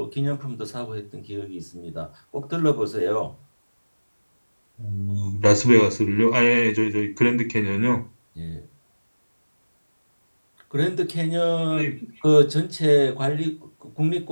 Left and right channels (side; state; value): both; inverted; correlation -1.00